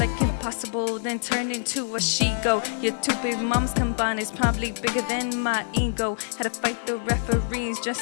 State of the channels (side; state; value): right; silent; digital silence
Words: impossible, then turned into a she-go. Your two big moms combined is probably bigger than my ego. Had to fight the referees